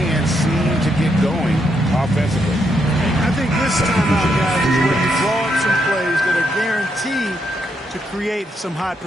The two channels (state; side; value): normal; both; correlation 0.78